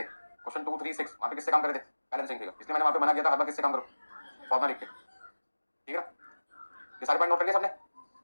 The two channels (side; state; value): both; inverted; correlation -1.00